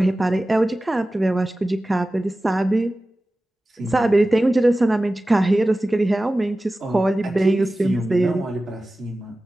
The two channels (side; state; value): both; normal; correlation 0.96